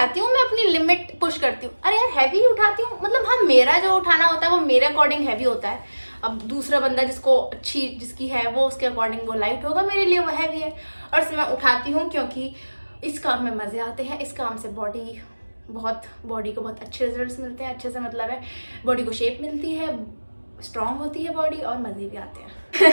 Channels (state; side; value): inverted; both; correlation -1.00